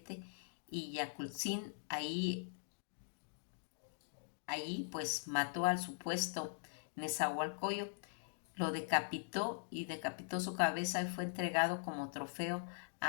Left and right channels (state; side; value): silent; right; digital silence